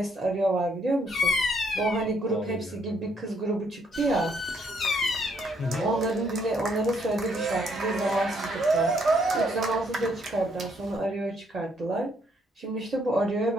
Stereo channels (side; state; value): both; normal; correlation 0.70